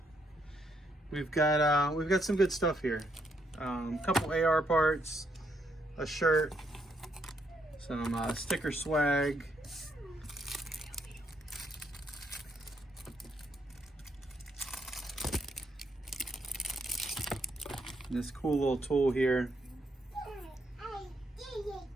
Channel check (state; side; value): normal; both; correlation 0.75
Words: we've got some good stuff here. A couple AR parts, a shirt, some sticker swag, and this cool little tool here.